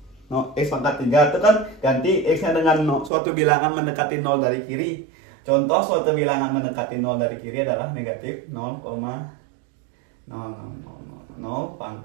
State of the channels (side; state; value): left; drops out; at 3.1 s